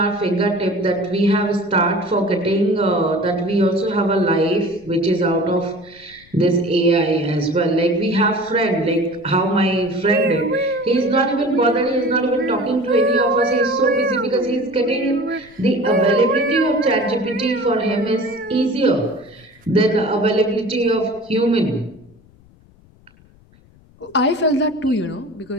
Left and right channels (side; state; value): left; noise; rumble, 28 dB below the sound